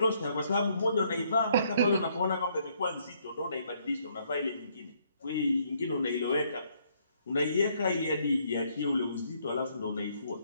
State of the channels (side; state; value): both; inverted; correlation -0.69